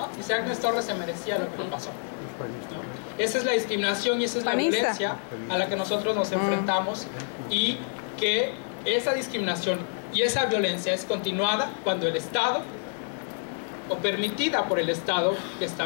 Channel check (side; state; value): right; silent; 60 dB below the other